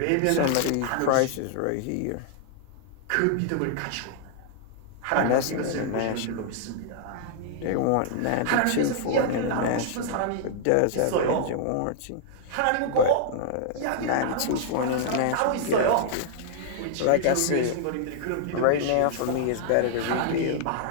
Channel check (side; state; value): both; different; correlation -0.01